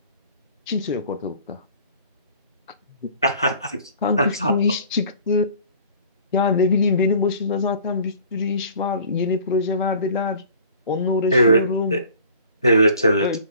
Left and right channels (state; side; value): inverted; both; correlation -0.49